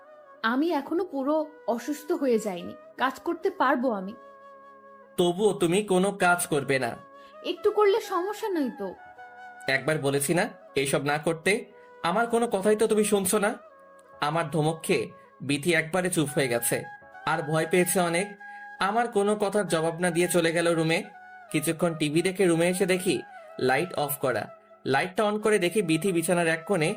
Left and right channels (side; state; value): both; identical; correlation 1.00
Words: আমি এখনো পুরো অসুস্থ হয়ে যাইনি, কাজ করতে পারবো আমি। তবুও তুমি কোনো কাজ করবে না? একটু করলে সমস্যা নেই তো। একবার বলেছি না এইসব না করতে? আমার কোনো কথাই তো তুমি শুনছো না। আমার ধমক খেয়ে বিথি একবারে চুপ হয়ে গেছে, আর ভয় পেয়েছে অনেক। আমার কোনো কথার জবাব না দিয়ে চলে গেল রুমে। কিছুক্ষণ টিভি দেখে রুমে এসে দেখি লাইট অফ করা। লাইটটা অন করে দেখি বিথি বিছানার এক কোণে